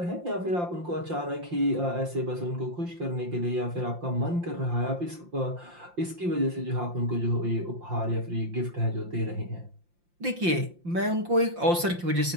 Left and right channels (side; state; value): left; late; 5.7 ms